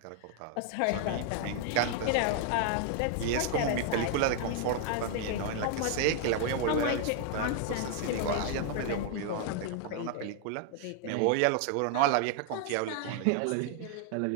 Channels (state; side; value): different; both; correlation 0.00